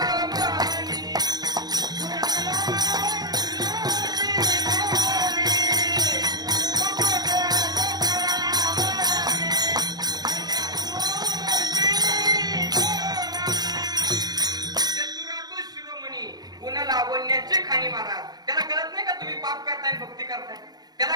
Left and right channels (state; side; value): late; left; 0.19 ms